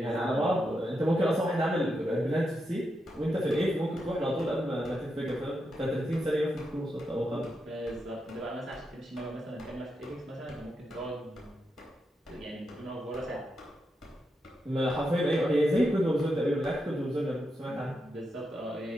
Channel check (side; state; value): both; normal; correlation 0.85